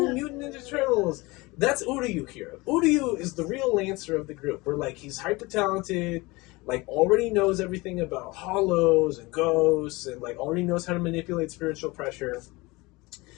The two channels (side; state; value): right; quieter; 23.2 dB